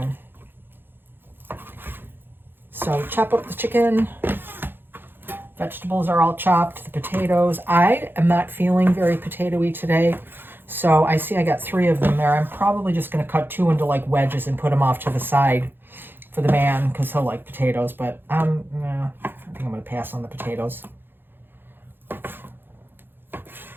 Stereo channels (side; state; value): left; late; 0.10 ms